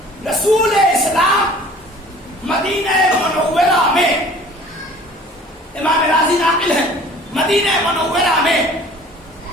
رسول اسلام مدینہ منورہ میں، امام راضی ناقل ہے، مدینہ منورہ میں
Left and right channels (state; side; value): normal; both; correlation 0.48